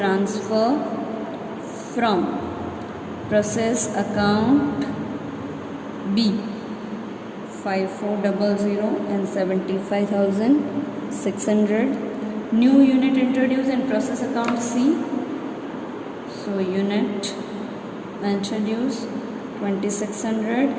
from process account B 5400 and 75,600. New unit introduced in process account C. So unit introduced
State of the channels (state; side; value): identical; both; correlation 1.00